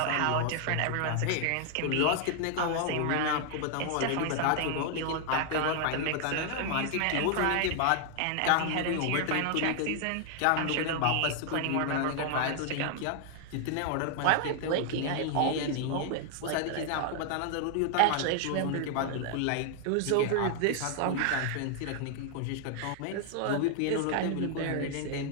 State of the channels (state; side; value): different; both; correlation 0.00